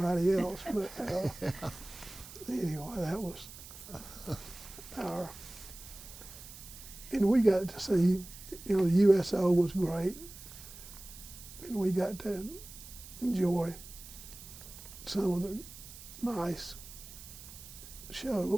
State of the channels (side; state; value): right; noise; hiss, 15 dB below the sound